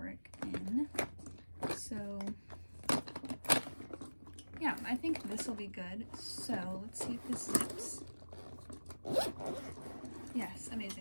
in. So yeah, I think this will be good. So let's see if this zips. Yes,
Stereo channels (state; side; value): inverted; both; correlation -1.00